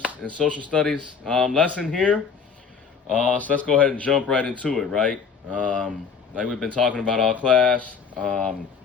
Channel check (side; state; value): right; quieter; 6.0 dB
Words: in social studies lesson here. So let's go ahead and jump right into it, right? Like we've been talking about all class,